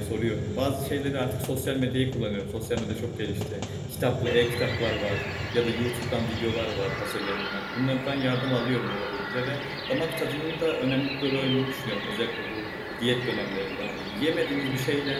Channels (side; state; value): both; identical; correlation 1.00